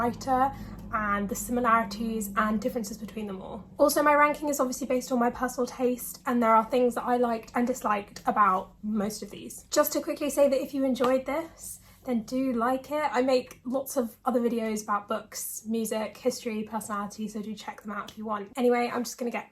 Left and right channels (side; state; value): both; identical; correlation 1.00